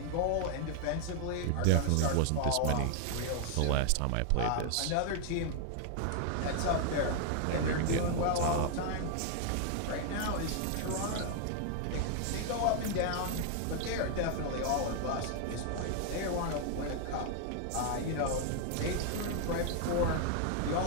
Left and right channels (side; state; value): both; different; correlation 0.00